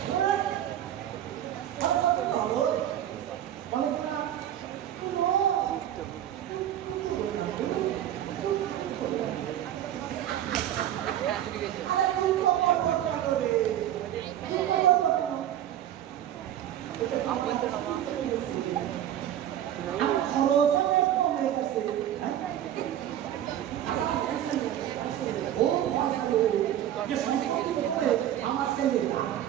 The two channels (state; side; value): quieter; left; 11.5 dB